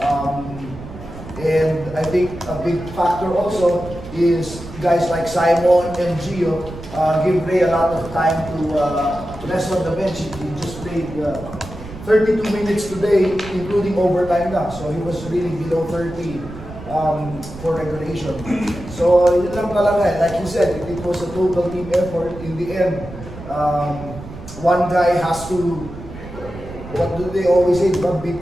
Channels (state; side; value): noise; right; rumble, 13 dB below the sound